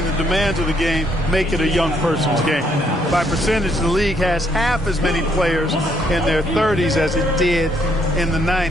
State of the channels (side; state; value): both; normal; correlation 0.70